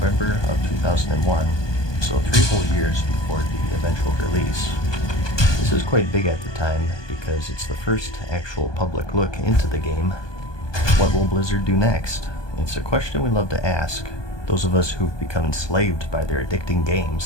of 2001, so 3 whole years before the eventual release. This is quite big at the time because it's the first actual public look into the game. What will Blizzard do next? It's a question we love to ask, those of us who've become enslaved by their addicting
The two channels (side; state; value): right; late; 1.2 ms